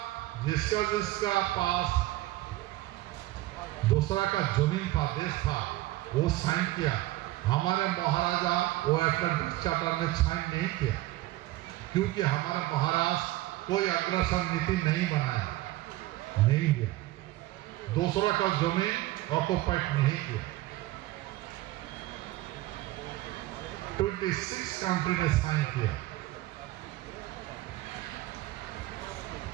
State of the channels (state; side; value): quieter; left; 17.2 dB